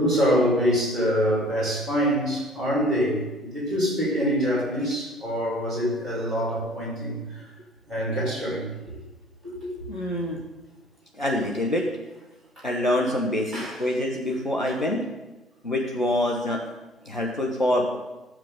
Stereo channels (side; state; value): both; normal; correlation 0.52